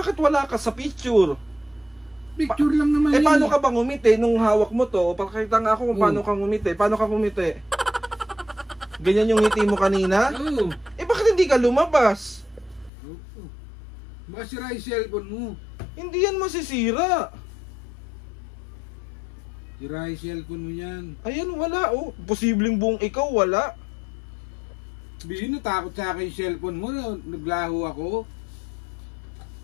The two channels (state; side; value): drops out; right; at 12.9 s